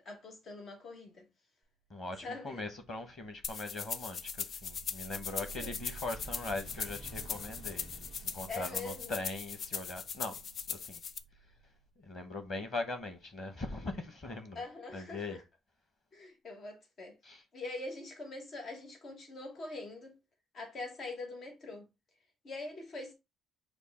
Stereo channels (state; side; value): quieter; right; 3.3 dB